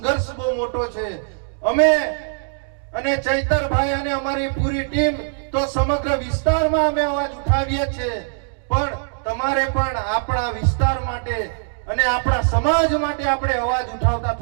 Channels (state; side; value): silent; left; digital silence